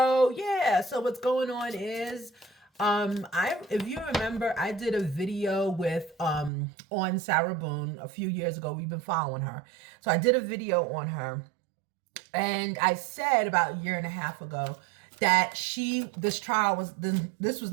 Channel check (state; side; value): drops out; left; at 6.5 s